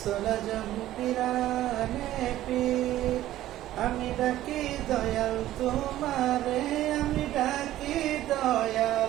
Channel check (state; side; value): quieter; left; 14.1 dB